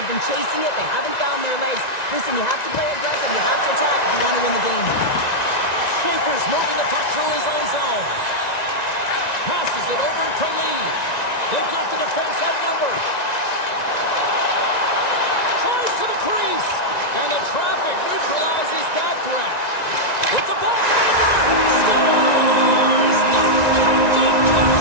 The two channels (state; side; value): late; right; 1.9 ms